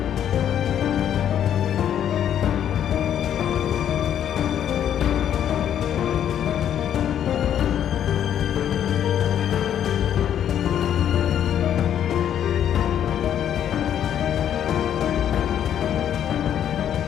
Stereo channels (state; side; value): quieter; right; 9.9 dB